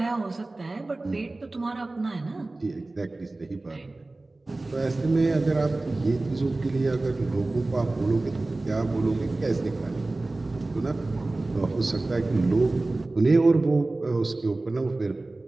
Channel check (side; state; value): left; quieter; 3.0 dB